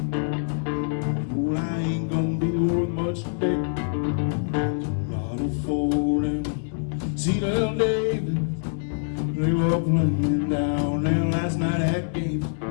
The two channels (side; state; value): right; silent; digital silence